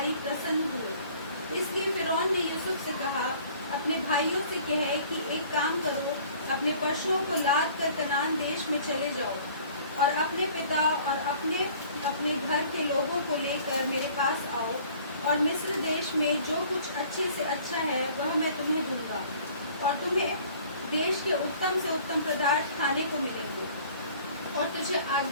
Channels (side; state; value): both; inverted; correlation -0.52